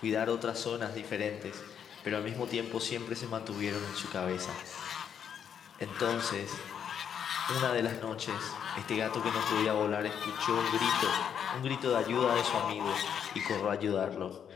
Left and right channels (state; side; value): quieter; right; 8.2 dB